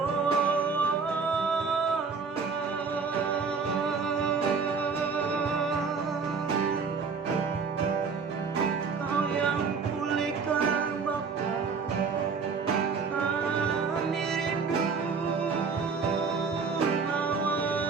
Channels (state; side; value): quieter; left; 5.2 dB